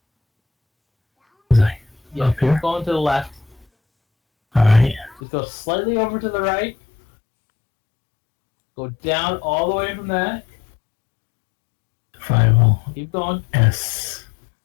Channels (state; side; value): drops out; right; at 5.2 s